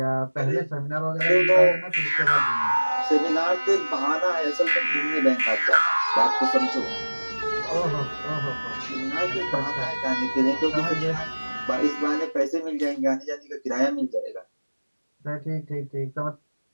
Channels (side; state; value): both; inverted; correlation -1.00